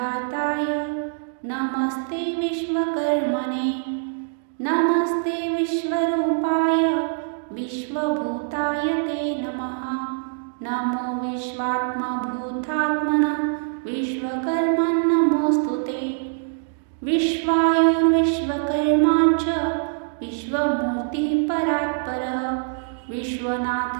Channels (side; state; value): left; silent; digital silence